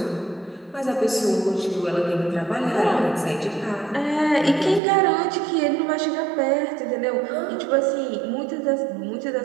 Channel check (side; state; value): left; drops out; at 4.8 s